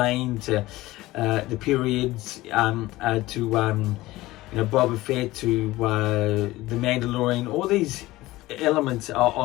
to the periods, to Boba Fett, to the Mandalorian. All these elements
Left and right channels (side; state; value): right; quieter; 18.1 dB